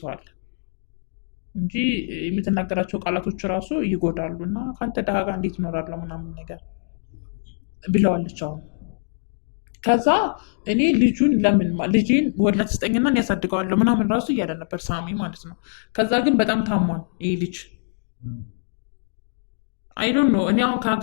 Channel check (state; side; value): silent; right; digital silence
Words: አለ እንጂ የምትናገራቸው ቃላቶች ራሱ ይጎዳሉ እና ከአንተ ድሃ ጋር እንዴት እኖራለሁ ምናምን ነገር ብለዋለች። አሁን ከዛ እኔ ልጁን ለምን ልጄን ወላድ ስጠኝና እኔ ያሳድገዋለሁ ምናምን ራሱ እያለ ነበር ሳሚ ማለት ነው። ከዛ ግን በጣም ታሟን ይህ ልጅ አይዶን ነው። እኔ አሁን